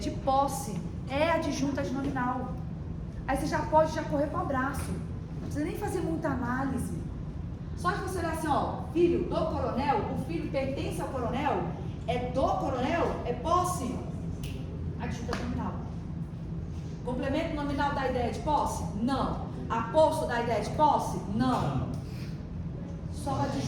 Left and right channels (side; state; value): both; identical; correlation 1.00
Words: posse, é adjunto adnominal. Aí você já pode correr para o abraço. Não precisa nem fazer muita análise. Só de você olhar assim, ó, filho do coronel, o filho pertence ao coronel, é do coronel, é posse, adjunto adnominal. Complemento nominal da ideia de posse? Não. Aposto da ideia de posse? Não. Só o